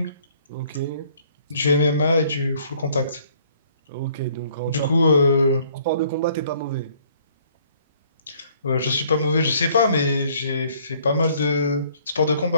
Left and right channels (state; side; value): inverted; both; correlation -0.61